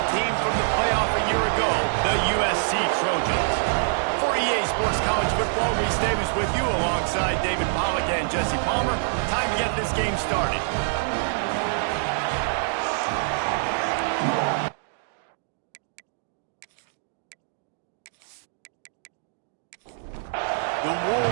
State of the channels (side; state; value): left; silent; digital silence